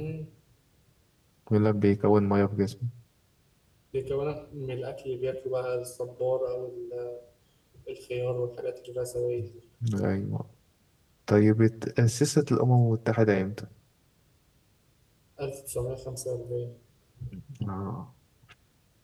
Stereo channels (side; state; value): both; identical; correlation 1.00